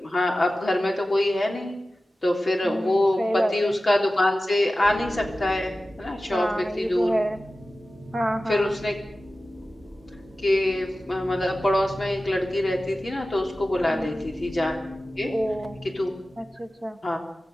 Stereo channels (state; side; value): normal; both; correlation 0.95